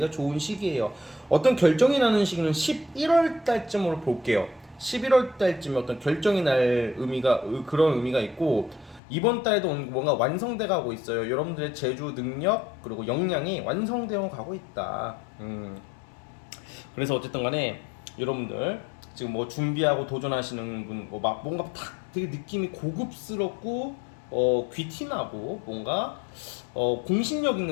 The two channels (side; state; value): right; drops out; at 9.0 s